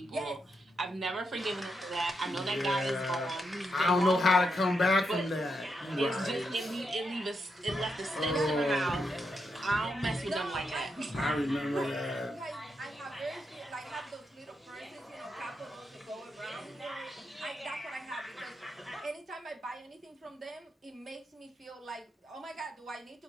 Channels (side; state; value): both; normal; correlation 0.82